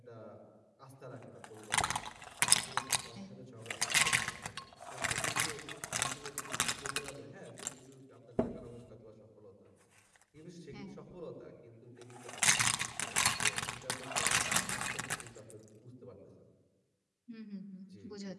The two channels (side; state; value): both; identical; correlation 1.00